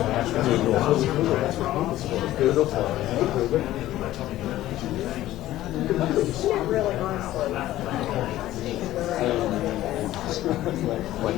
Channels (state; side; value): quieter; right; 14.8 dB